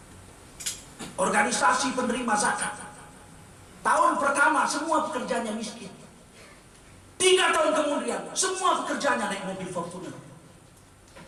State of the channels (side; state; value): both; identical; correlation 1.00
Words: organisasi penerima zakat. Tahun pertama semua pekerjanya miskin. 3 tahun kemudian semua pekerjanya naik mobil Fortuner.